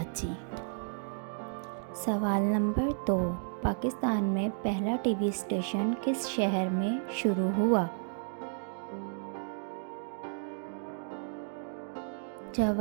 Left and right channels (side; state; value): left; silent; digital silence